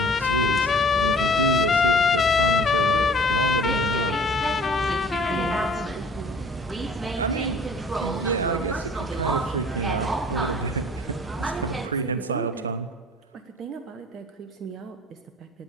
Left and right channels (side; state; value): both; normal; correlation 0.49